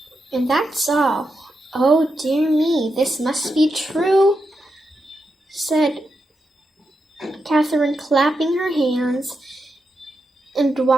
And that's all." "Oh dear me, this must be true," said Catherine, clapping her hands and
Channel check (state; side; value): normal; both; correlation 0.86